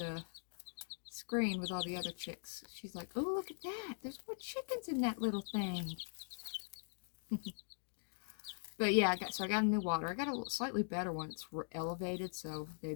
screen with all the other chicks. She's like, oh, look at that. There's more chickens in that little thing. But yeah, I got a new water. I got a slightly better one. It's elevated, so they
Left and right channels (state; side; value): silent; right; digital silence